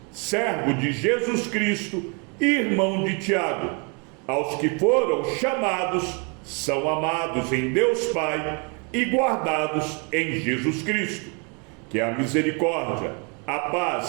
servo de Jesus Cristo, irmão de Tiago, aos que foram chamados, são amados em Deus Pai e guardados em Jesus Cristo. Que a misericórdia, a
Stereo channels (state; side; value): quieter; left; 34.4 dB